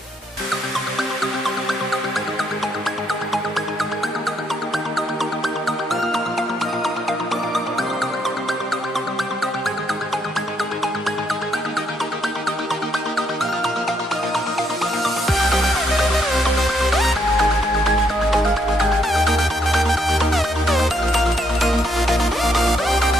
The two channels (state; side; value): normal; both; correlation 0.73